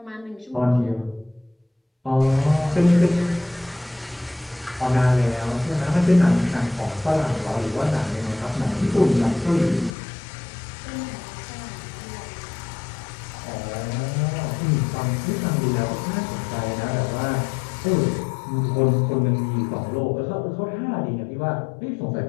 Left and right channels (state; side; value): drops out; right; at 10.0 s